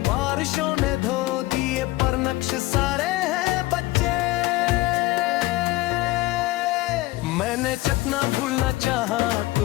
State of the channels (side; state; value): right; quieter; 19.1 dB